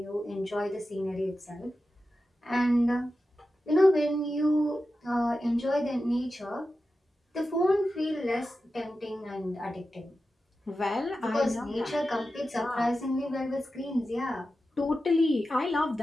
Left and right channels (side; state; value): both; normal; correlation 0.92